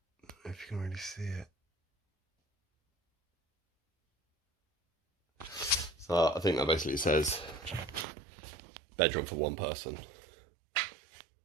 if you can really see it, so I think that basically says bedroom for one person.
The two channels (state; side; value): drops out; left; at 8.1 s